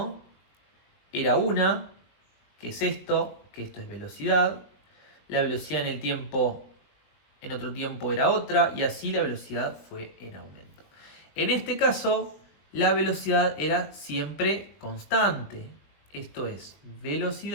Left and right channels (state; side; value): late; right; 21 ms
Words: era 1, que es esto, que esto es velocidad. La velocidad en el tiempo, en otro tiempo era otra, y así la velocidad fue en aumento. En este caso, la velocidad era siempre constante. Esto es,